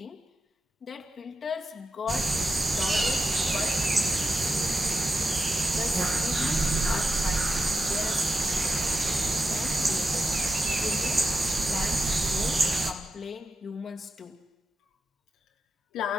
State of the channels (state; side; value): normal; both; correlation 0.89